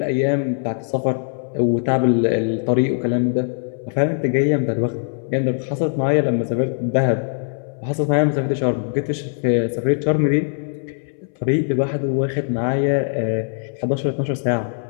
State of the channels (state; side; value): silent; right; 63 dB below the other